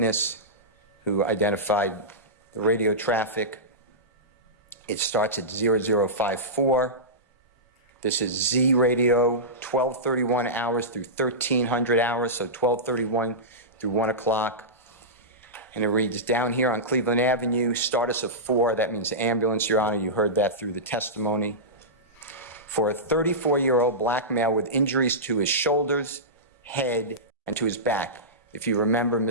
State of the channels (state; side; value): normal; both; correlation -0.16